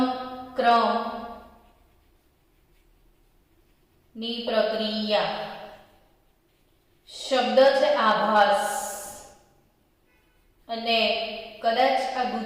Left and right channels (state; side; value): identical; both; correlation 1.00